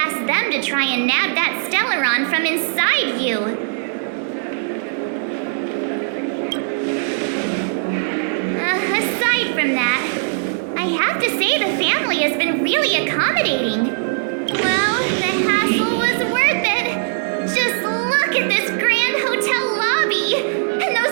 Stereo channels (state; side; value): silent; left; digital silence